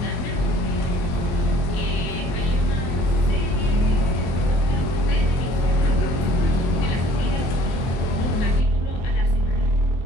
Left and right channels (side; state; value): right; late; 24 ms